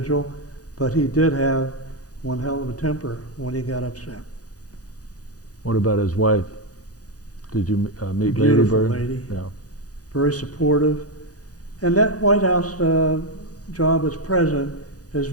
but he did have one hell of a temper when he got upset. What about his wife? Did you meet? Beautiful Lady Bird? lady, Yeah. very supportive. And that White House job as president is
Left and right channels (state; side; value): late; right; 0.67 ms